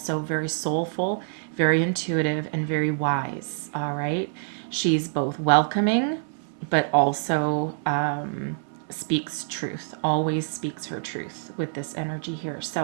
very soulful, very intuitive, and very wise. All right. She's both welcoming, but also speaks truth, always speaks her truth with this energy here.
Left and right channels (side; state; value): left; silent; 61 dB below the other